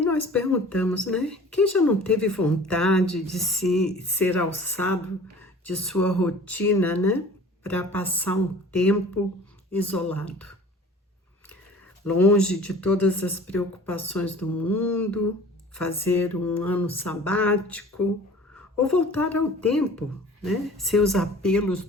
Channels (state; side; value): normal; both; correlation 0.45